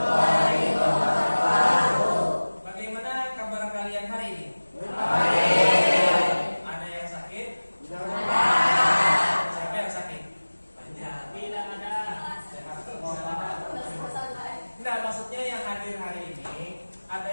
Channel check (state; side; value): inverted; both; correlation -1.00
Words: wabarakatuh. Bagaimana kabar kalian hari ini? Baik. Ada yang sakit? Ada. Siapa yang sakit? Banyak. Tidak ada. Sehat semua. Nah, maksudnya yang hadir hari ini ada